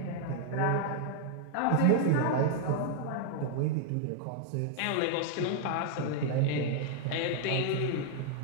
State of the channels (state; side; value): different; both; correlation 0.00